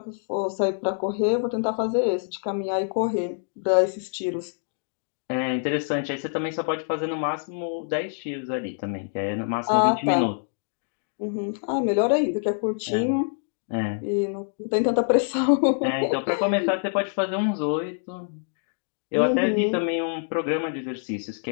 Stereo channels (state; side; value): silent; right; digital silence